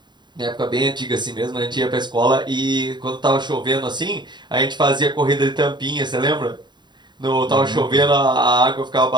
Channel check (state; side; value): late; left; 0.22 ms